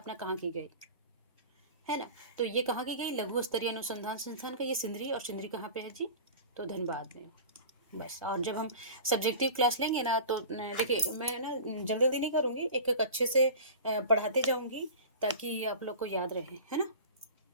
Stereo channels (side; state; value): both; inverted; correlation -0.36